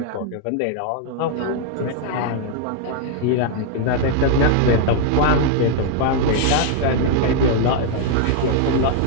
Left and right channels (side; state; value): both; different; correlation 0.00